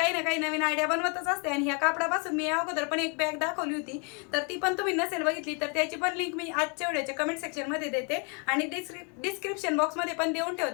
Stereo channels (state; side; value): quieter; right; 36.3 dB